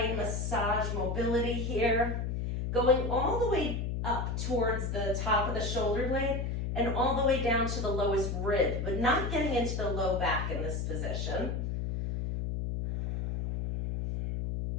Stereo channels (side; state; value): left; noise; hum, 2 dB below the sound